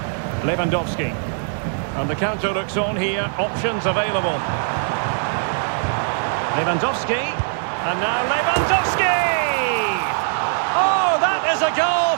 Lewandowski. And the counter looks on here. Options available. Lewandowski. And now Lewandowski! Oh, that is a goal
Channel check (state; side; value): silent; left; digital silence